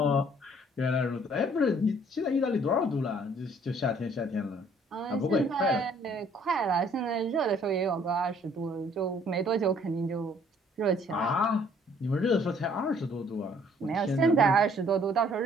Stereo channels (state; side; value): normal; both; correlation 0.60